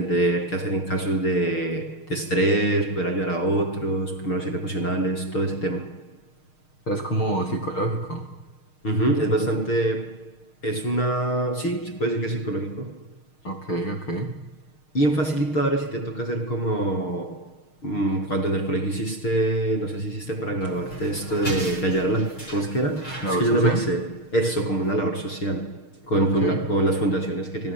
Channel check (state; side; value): late; right; 6.5 ms